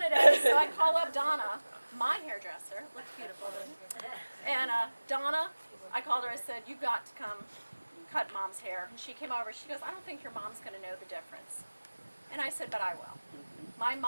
today? So I call up Donna, my hairdresser. Looks beautiful. And Donna, I called her. I said, "You've got to come cut Mom's hair." And she came over. She goes, "I don't think your mom's going to know the difference." And I said, "But I will." My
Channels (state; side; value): inverted; both; correlation -1.00